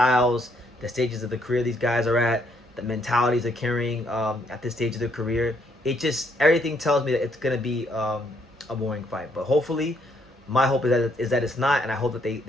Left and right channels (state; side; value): normal; both; correlation 0.71